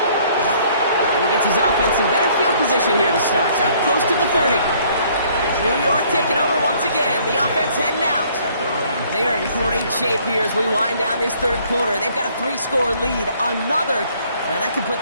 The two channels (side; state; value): both; inverted; correlation -0.61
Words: And he gets his offense in better field position here to start. Up close to the 30. New York taking over once again. The offense heading out. They are in great shape here as we wind down this third quarter. They've got a 3-score lead. Now that could put